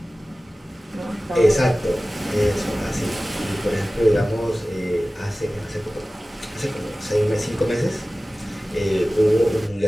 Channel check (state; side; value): normal; both; correlation 0.97